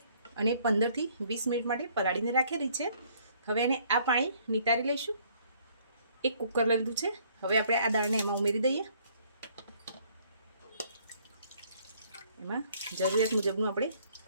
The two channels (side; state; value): both; inverted; correlation -0.62